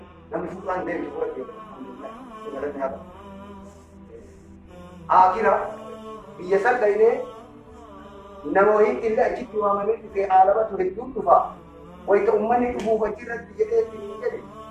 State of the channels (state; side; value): identical; both; correlation 1.00